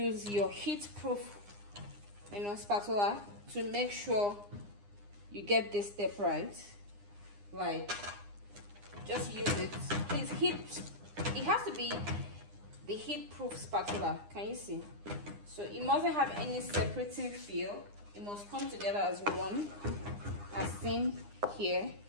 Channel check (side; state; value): left; late; 9.8 ms